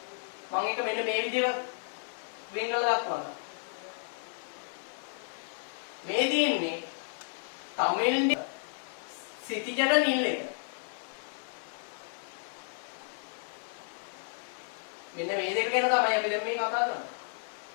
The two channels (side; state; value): right; silent; digital silence